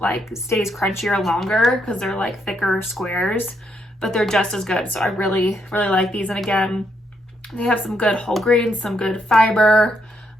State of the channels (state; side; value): normal; both; correlation 0.77